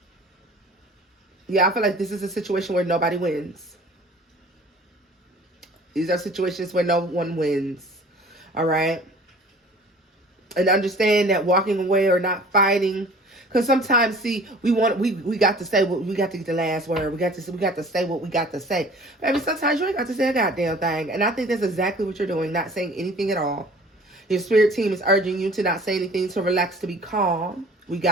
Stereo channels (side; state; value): both; normal; correlation 0.48